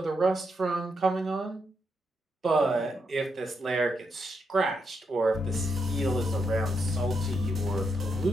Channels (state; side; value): normal; both; correlation 0.81